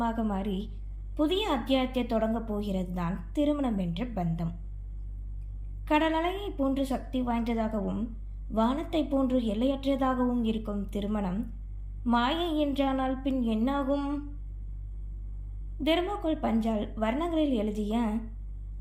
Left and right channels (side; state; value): both; identical; correlation 1.00